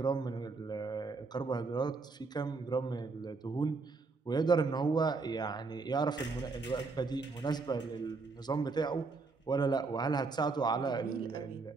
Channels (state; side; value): quieter; left; 4.1 dB